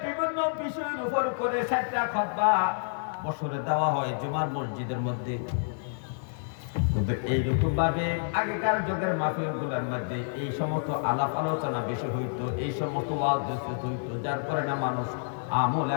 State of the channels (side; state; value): right; silent; digital silence